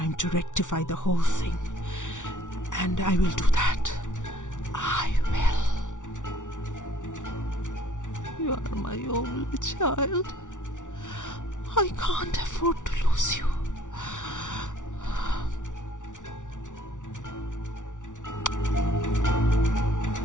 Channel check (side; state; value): right; late; 0.87 ms